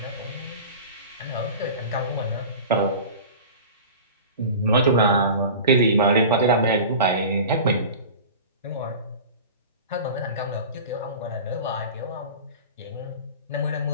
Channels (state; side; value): inverted; both; correlation -0.35